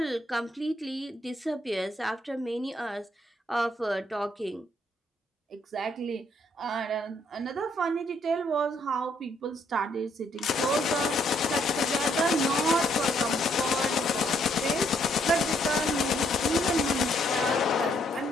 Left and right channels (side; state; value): both; normal; correlation 0.70